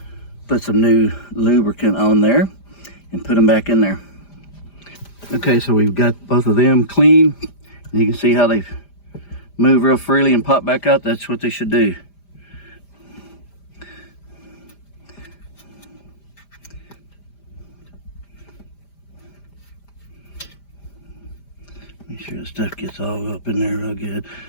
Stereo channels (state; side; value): late; right; 5.0 ms